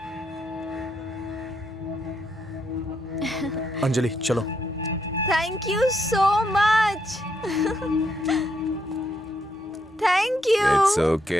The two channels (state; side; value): normal; both; correlation 0.77